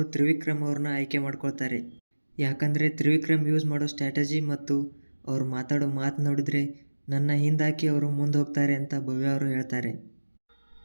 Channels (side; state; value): both; inverted; correlation -1.00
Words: ತ್ರಿವಿಕ್ರಮ್ ಅವ್ರನ್ನ ಆಯ್ಕೆ ಮಾಡ್ಕೊಳ್ತಾರೆ. ಯಾಕಂದರೆ ತ್ರಿವಿಕ್ರಮ್ ಯೂಸ್ ಮಾಡೋ ಸ್ಟ್ರಾಟಜಿ ಮತ್ತು ಅವ್ರು ಮಾತಾಡೋ ಮಾತು ನೋಡಿದ್ರೆ ನನ್ನ ಹಿಂದಾಕಿ ಅವರು ಮುಂದೆ ಹೋಗ್ತಾರೆ ಅಂತ ಭವ್ಯ ಅವರು ಹೇಳ್ತಾರೆ.